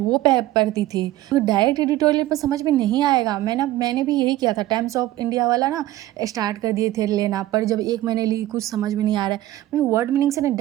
पढ़ती थी। तो डायरेक्ट एडिटोरियल पर समझ में नहीं आएगा। मैंने भी यही किया था, टाइम्स ऑफ इंडिया वाला ना स्टार्ट कर दिए थे लेना, पर जब 1 महीने ली कुछ समझ में नहीं आ रहा है, मैं वर्ड मीनिंग से ना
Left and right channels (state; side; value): quieter; left; 15.3 dB